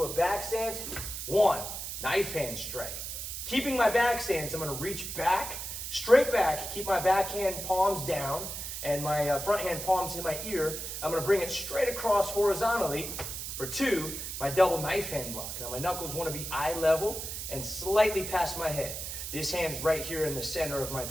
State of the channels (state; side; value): noise; right; hiss, 6 dB below the sound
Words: a back stance. 1, knife hand strike. Keeping my back stance, I'm going to reach back, straight back, keep my backhand palms down, and my front hand palms in my ear. I'm going to bring it straight across horizontally for 2, my double knife hand block. Now my knuckles want to be eye level and slightly past my head. This hand's right here in the center of my